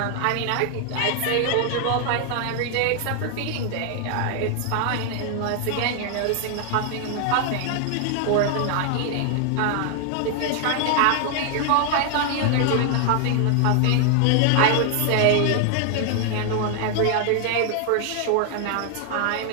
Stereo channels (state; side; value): different; both; correlation 0.00